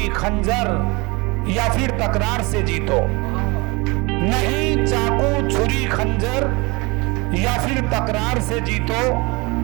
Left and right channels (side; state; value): left; quieter; 26.2 dB